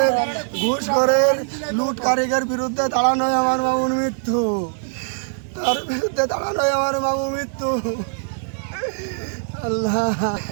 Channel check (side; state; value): left; silent; digital silence